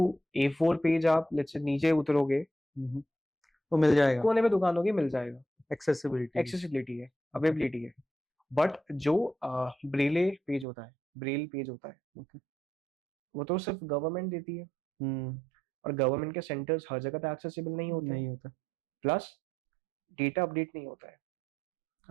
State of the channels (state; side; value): drops out; left; at 10.7 s